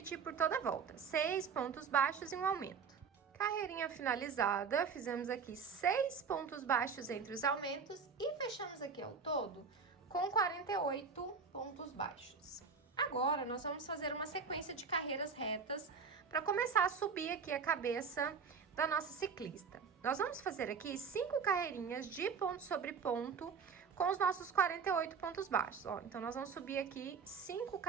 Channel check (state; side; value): quieter; left; 5.8 dB